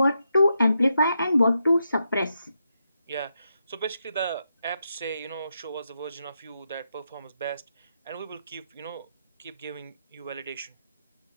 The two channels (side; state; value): both; inverted; correlation -0.83